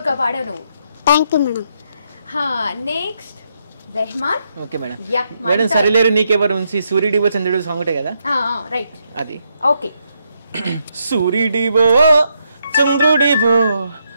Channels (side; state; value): both; inverted; correlation -0.78